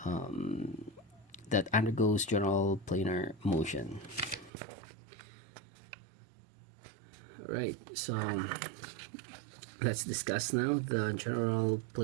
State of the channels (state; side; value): drops out; left; at 4.5 s